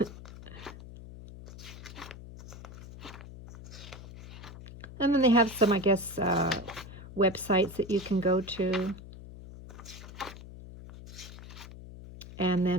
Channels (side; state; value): left; noise; hum, 14 dB below the sound